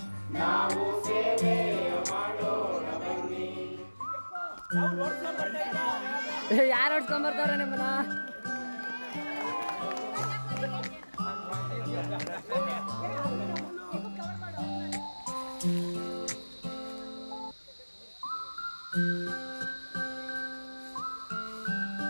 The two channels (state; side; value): inverted; both; correlation -1.00